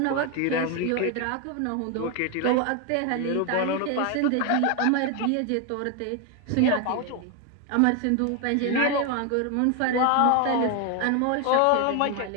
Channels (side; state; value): both; different; correlation 0.01